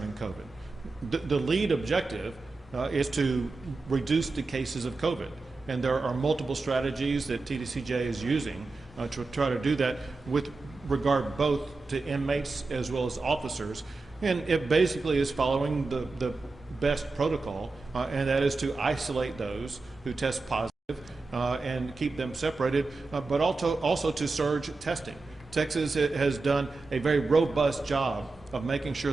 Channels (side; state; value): left; quieter; 3.7 dB